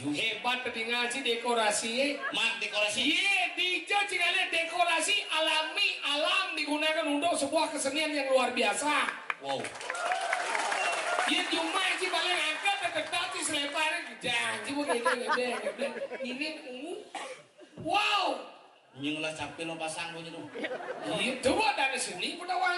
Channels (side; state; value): both; identical; correlation 1.00